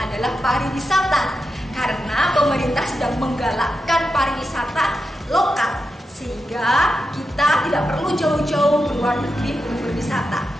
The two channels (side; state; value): both; normal; correlation 0.88